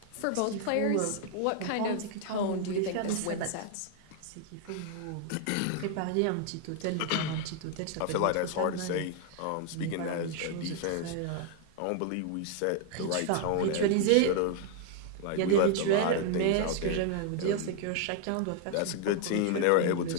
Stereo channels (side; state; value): both; different; correlation 0.00